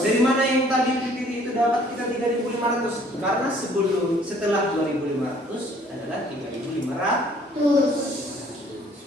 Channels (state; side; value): normal; both; correlation 0.58